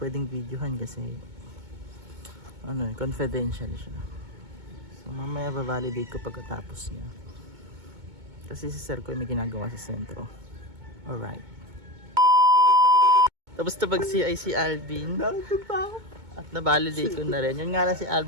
videohan kasi confidential siya. So mamaya ba-validate ko pagkatapos niya. Kasi si Sir ko may ginagawa sa sentro. Alright. Tapos pag CI si Alvin, at na-validate ko na rin. Yun nga lang si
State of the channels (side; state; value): left; late; 2.2 ms